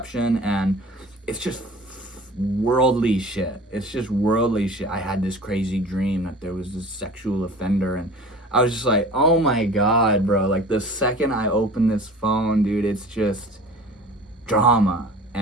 and it's just worldly shit. I had this crazy dream that there was this sexual offender, and I was just like, oh my God, bro. Like, the second I open this phone, dude, it's just drama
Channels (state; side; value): normal; both; correlation 0.41